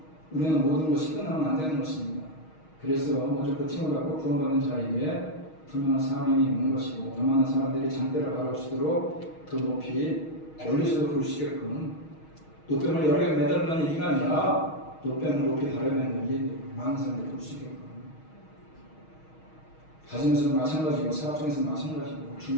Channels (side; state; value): right; late; 6.4 ms